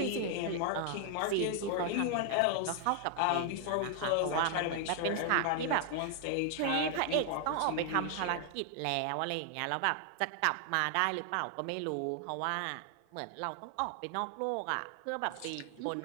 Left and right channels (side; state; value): both; different; correlation 0.00